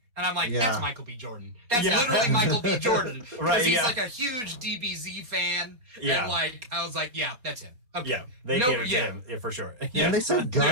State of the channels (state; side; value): late; left; 4.2 ms